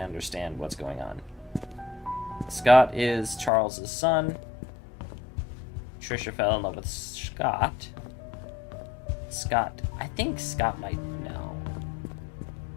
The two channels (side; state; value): right; drops out; at 3.5 s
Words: what's going on. Scott is Charles's son. Trisha fell in love with Scott. I think Scott might know.